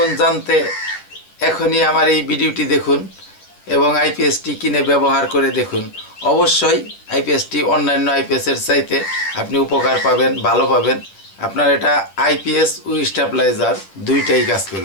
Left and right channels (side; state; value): right; late; 10 ms